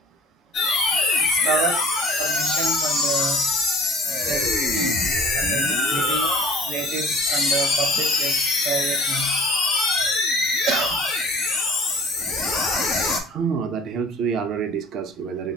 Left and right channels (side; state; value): both; normal; correlation 0.47